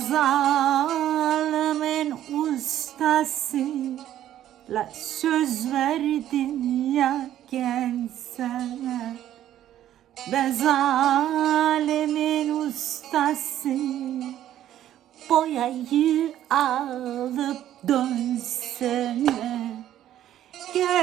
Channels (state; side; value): quieter; left; 11.9 dB